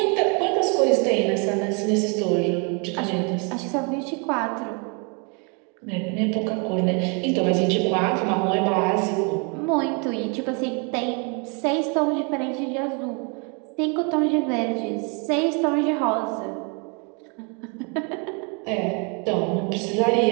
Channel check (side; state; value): left; quieter; 34.7 dB